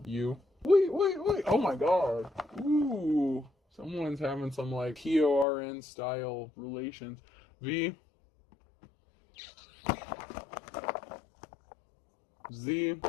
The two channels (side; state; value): right; drops out; at 5.5 s